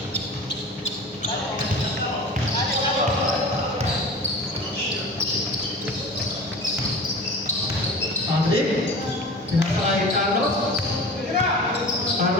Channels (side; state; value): both; normal; correlation 0.37